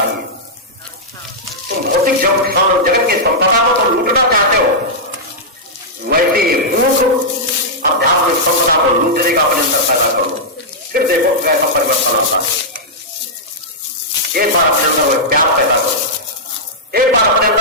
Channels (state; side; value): normal; both; correlation -0.09